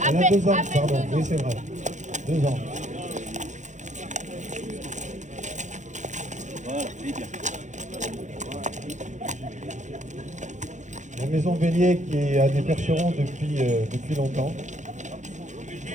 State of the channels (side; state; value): left; late; 0.35 ms